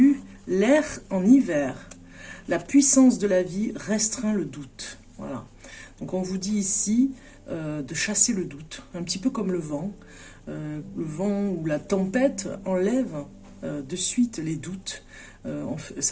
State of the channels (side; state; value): both; identical; correlation 1.00